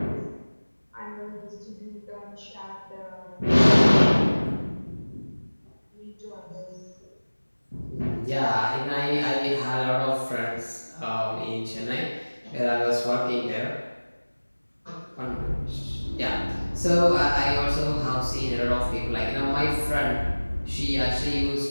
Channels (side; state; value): both; inverted; correlation -1.00